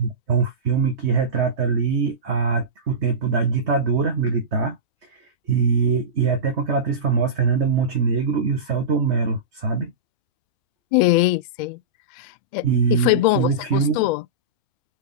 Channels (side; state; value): left; late; 2.1 ms